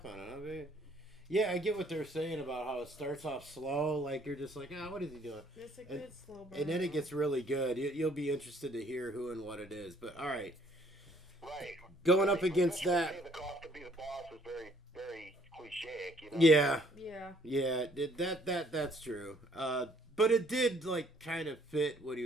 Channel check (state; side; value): normal; both; correlation 0.62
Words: on it, huh, babe? Yeah, I get what they're saying about how it starts off slow, like you're just like, what is he doing? It's a good slow burn. And then it gets really good. You'll be interested to hear who and what it is. But all right. Right. Going up against that. The cost to be the boss is very, very cliche, you know. Yeah. Yeah. Yeah. That's true. But it did like kind of fit what he